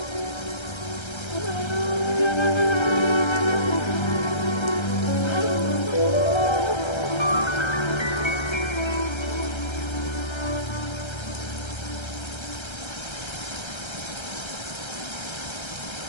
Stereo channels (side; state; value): right; late; 1.3 ms